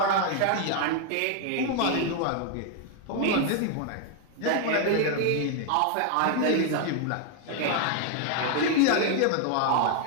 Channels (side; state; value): both; different; correlation 0.00